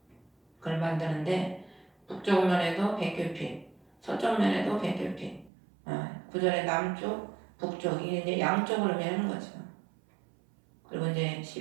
그걸 만드는데 북쪽 면에도 100규빗, 서쪽 면에도 100규빗. 구절의 남쪽, 북쪽 이게 이제 양쪽을 의미하는 거죠. 그리고 이제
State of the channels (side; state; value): left; drops out; at 5.5 s